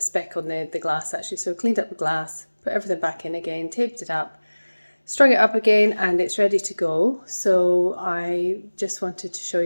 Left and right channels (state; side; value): inverted; both; correlation -1.00